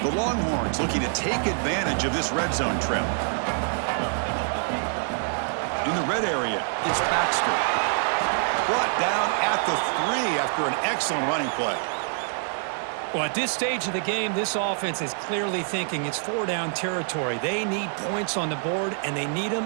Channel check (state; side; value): silent; left; 61 dB below the other